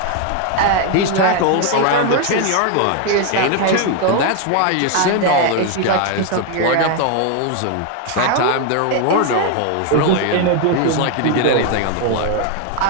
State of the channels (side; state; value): both; different; correlation 0.01